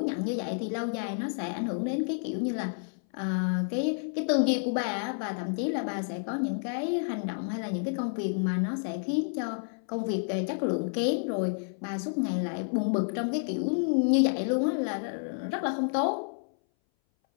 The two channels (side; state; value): right; silent; 58 dB below the other